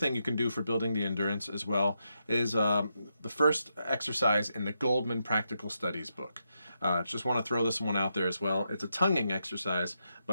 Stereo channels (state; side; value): inverted; both; correlation -0.84